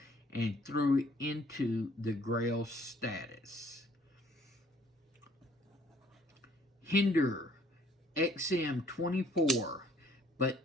and threw it into the Grail status. Hinderer XM24,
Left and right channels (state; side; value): normal; both; correlation 0.60